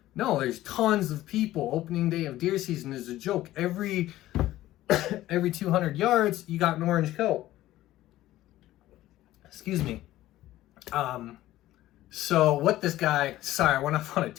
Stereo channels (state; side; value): quieter; right; 15.1 dB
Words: No, there's tons of people. Opening day of deer season is a joke. Every 200 yards, you got an orange coat. Excuse me. So what this guy, sorry, I went off on a